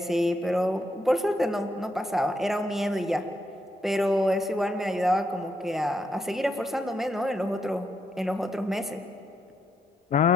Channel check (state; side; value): normal; both; correlation 0.79